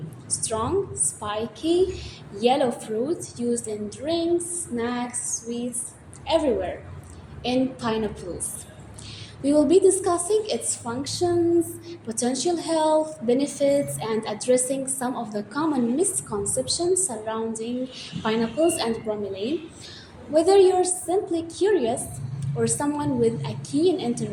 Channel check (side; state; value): both; identical; correlation 1.00